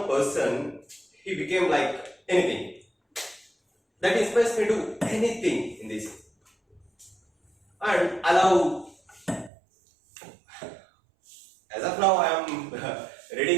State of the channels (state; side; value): drops out; left; at 9.5 s